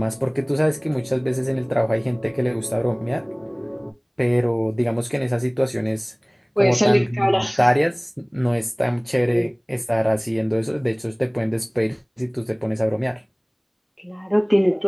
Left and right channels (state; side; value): identical; both; correlation 1.00